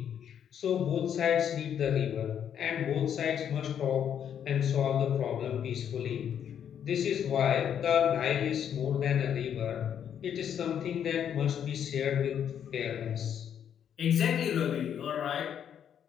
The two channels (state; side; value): quieter; right; 8.9 dB